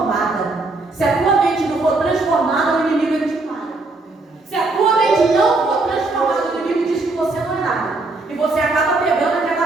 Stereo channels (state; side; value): quieter; left; 3.3 dB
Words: Se a tua mente não for transformada, o inimigo ele te para. Se a tua mente não for transformada, o inimigo diz que você não é nada. E você acaba pegando